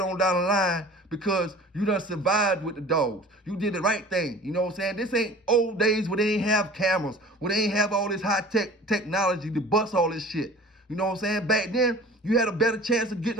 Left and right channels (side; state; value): both; normal; correlation 0.44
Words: on down the line because you done survived with the dogs. You did the right thing. You know what I'm saying? This ain't old days where they ain't have cameras, where they ain't have all this high-tech technology to bust all this shit. You know what I'm saying? Back then, you had a better chance of getting